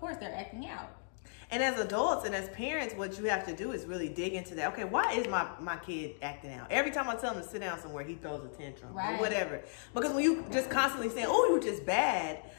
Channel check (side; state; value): right; silent; digital silence